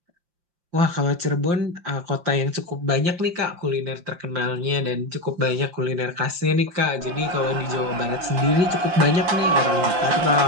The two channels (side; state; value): left; late; 5.7 ms